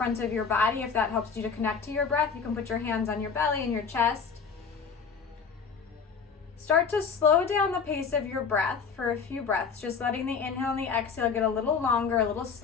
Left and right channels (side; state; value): right; quieter; 5.9 dB